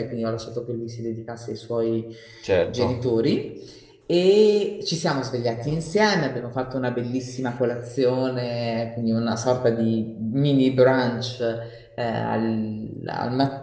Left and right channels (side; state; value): both; identical; correlation 1.00